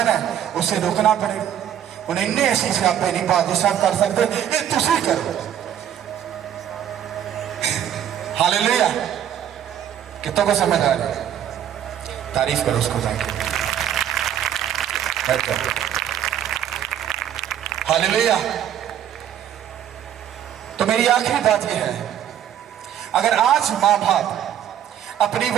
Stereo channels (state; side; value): quieter; left; 10.2 dB